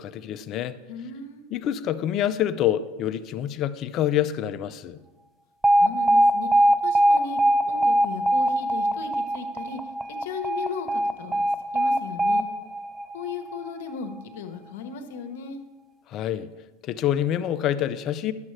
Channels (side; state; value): both; normal; correlation 0.77